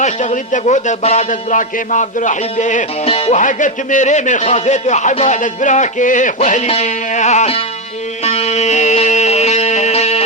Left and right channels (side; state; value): both; normal; correlation 0.09